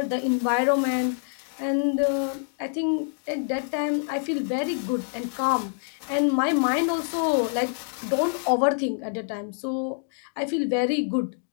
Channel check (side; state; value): right; silent; 59 dB below the other